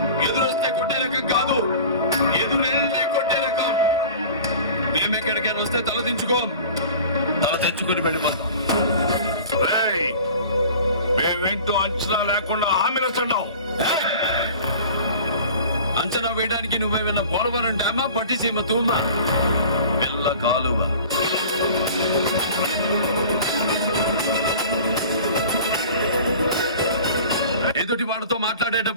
ఎదురొస్తే కొట్టే రకం కాదు, ఎదురెళ్ళి కొట్టే రకం. మేమెక్కడికైనా వస్తే తల దించుకోం, తల తెచ్చుకుని వెళ్ళిపోతాం. మేమేంటో అంచనా లేకుండా హామీలు వస్తున్నావు. అంచనా వేయడానికి నువ్వేమన్నా పోలవరం డ్యామా, పట్టిసీమ తూమా, పిల్ల కాలువ. ఎదుటి వాడితో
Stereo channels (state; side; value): inverted; both; correlation -0.42